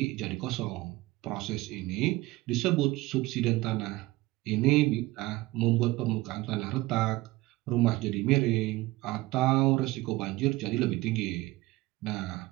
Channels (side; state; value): left; quieter; 19.7 dB